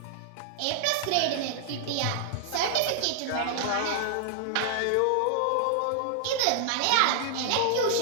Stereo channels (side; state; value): both; different; correlation -0.01